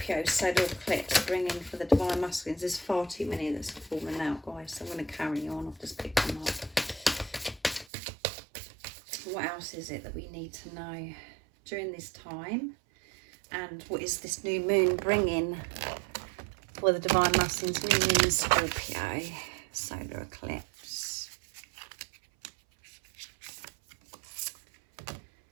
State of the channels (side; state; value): left; drops out; at 7.9 s